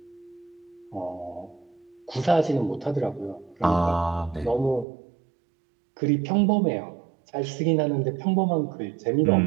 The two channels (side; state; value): left; drops out; at 4.9 s